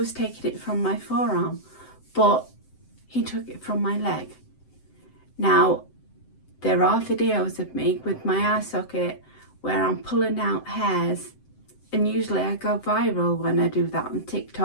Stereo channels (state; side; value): late; right; 7.8 ms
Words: taking it from my forearm, but he took it from my leg. Now, there are videos of me with my eye socket where I'm pulling out hairs, and usually I go viral when I do that on